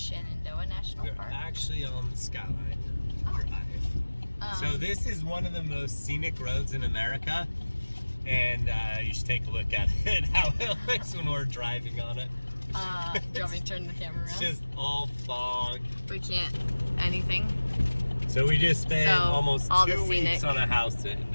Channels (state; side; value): inverted; both; correlation -1.00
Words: National Park. We're actually on the Skyline Drive. So this is one of the most scenic roads in America, and you should take a look at it, how it looks when we're driving on it. Do you want me to turn the camera around? It's just all fog. We can't anything. So we just spent almost 2 weeks scenic on a house